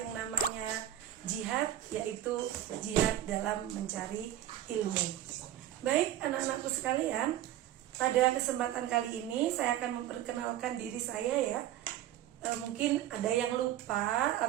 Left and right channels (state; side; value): quieter; left; 12.6 dB